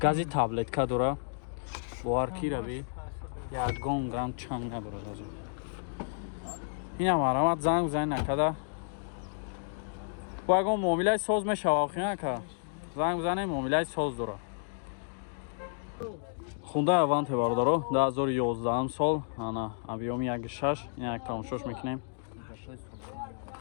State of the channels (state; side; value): silent; right; digital silence